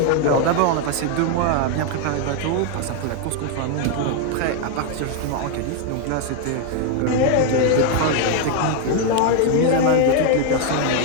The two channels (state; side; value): different; both; correlation 0.00